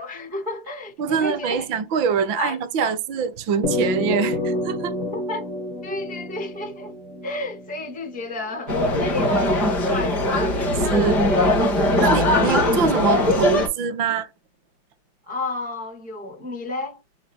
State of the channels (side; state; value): left; late; 5.8 ms